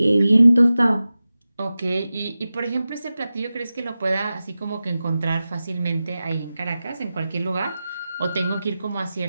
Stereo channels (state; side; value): inverted; both; correlation -0.95